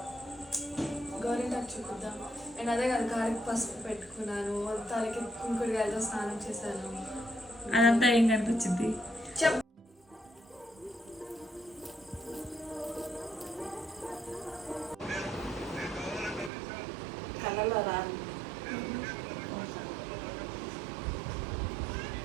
గోరింటాకు చూపిద్దాం. నేను అదే కదా కాలికి పసుపు పెట్టుకున్నాను, తలకి కుంకుడుగాయలతో స్నానం చేశాను. అదంతా ఏం కనిపించింది? చెప్ కళ్ళలో రాదు.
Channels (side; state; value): left; drops out; at 16.5 s